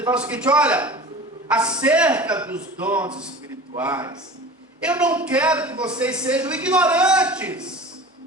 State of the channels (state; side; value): normal; both; correlation 0.38